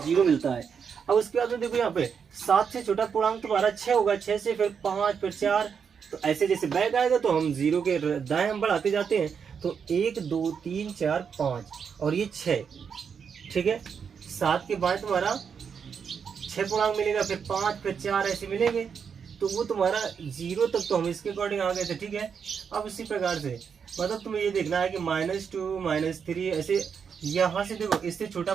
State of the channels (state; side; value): quieter; left; 6.7 dB